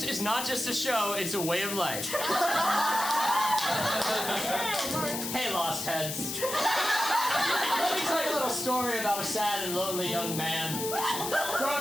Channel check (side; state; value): left; noise; hiss, 5 dB below the sound